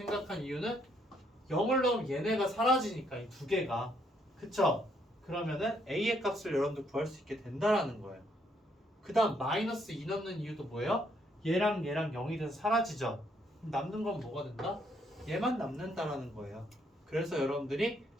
이유는 0을 넣으면 얘네가 사라지니까 이 두 개가. 그쵸? 그러면은 a의 값을 여러분들 구할 수 있게 된다라는 거예요. 그 다음 마이너스 2 넣는 이유도 뭐예요? 얘랑 0이 돼서 사라지죠. 그럼 남는 건 뭐가 된다? 얘만 남는다라는 거예요. 그래서 여러분들이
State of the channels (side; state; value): both; normal; correlation 0.71